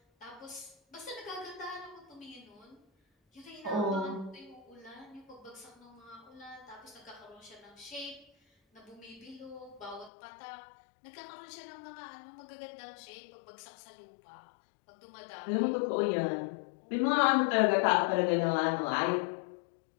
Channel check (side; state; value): right; drops out; at 10.1 s